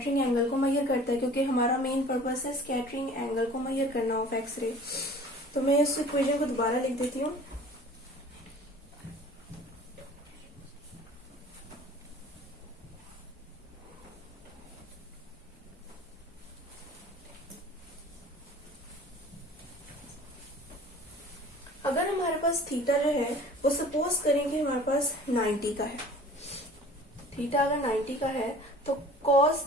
एंगल को मेजर करता है, क्योंकि हमारा मेन पर्पस है स्कैटरिंग एंगल को मेजर करना ऑफ एक्स रे। तो मैं इस इक्वेशन को दोबारा लिख देती हूँ। अगर हमारे पास थीटा जो है वो सपोज करें कि हमारे पास 90 का है, थीटा अगर 90 का है तो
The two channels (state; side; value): normal; both; correlation 0.46